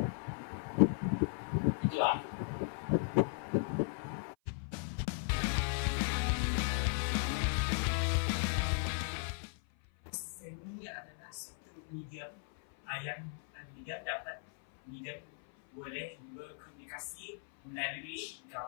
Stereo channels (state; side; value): silent; right; 53 dB below the other